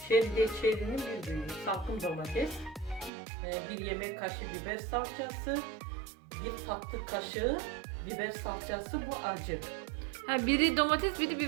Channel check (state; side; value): drops out; left; at 3.1 s